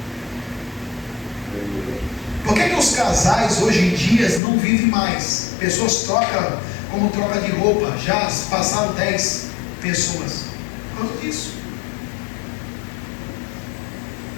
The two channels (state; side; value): drops out; right; at 4.4 s